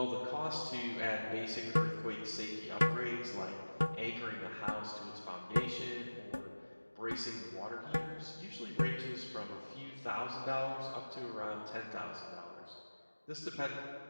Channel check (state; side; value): inverted; both; correlation -1.00